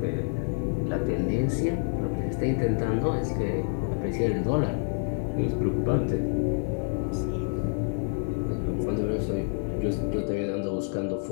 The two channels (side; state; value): right; silent; 58 dB below the other